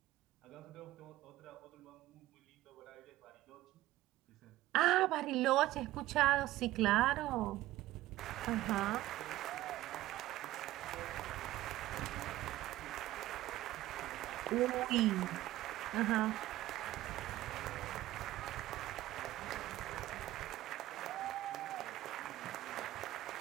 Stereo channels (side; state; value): left; quieter; 15.9 dB